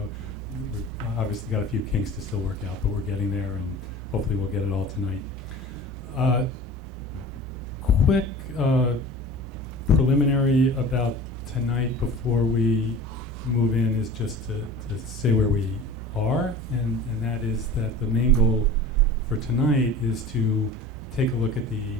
we've obviously got a few kinks to still work out, but we're getting there, and hopefully we'll get it all tonight. Quick preliminary about tonight before we move in is just to say where we are, and that is that the main goal for tonight is to take a look at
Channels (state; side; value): normal; both; correlation 0.39